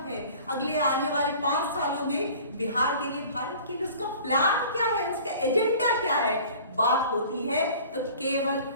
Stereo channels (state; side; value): inverted; both; correlation -0.46